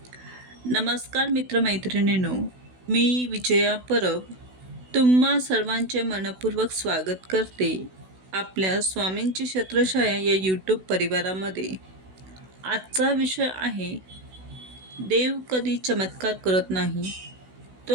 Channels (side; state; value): left; late; 16 ms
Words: नमस्कार मित्रमैत्रिणींनो, मी विजया परब तुम्हा सर्वांचे मनपूर्वक स्वागत करते आपल्या स्वामींची छत्रछाया या यूट्यूब परिवारामध्ये. आजचा विषय आहे, देव कधी चमत्कार करत नाही, तो